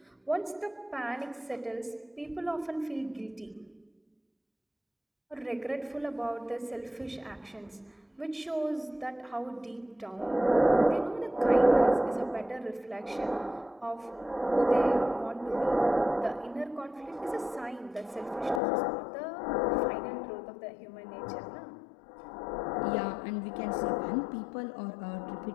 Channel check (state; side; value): drops out; right; at 18.6 s